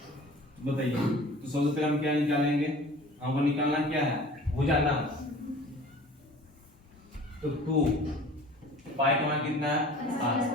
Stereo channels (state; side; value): normal; both; correlation 0.45